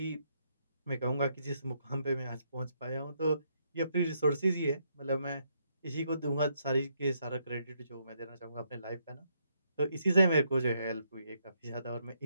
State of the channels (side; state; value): both; inverted; correlation -0.75